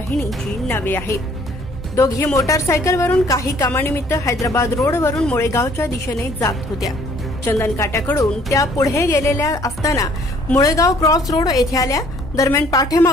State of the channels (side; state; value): both; normal; correlation 0.59